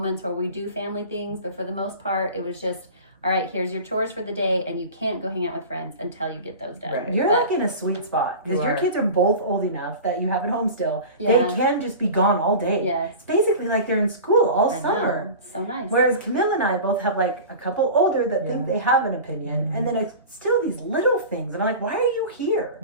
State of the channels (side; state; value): both; inverted; correlation -0.34